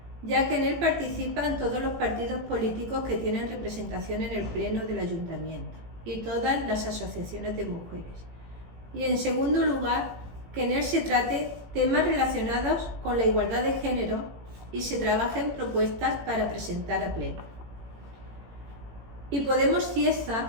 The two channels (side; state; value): left; late; 18 ms